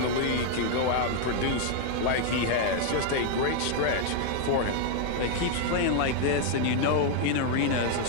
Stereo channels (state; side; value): different; both; correlation 0.00